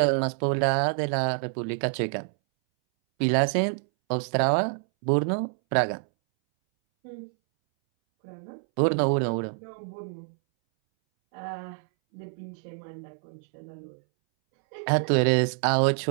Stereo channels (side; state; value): left; silent; 60 dB below the other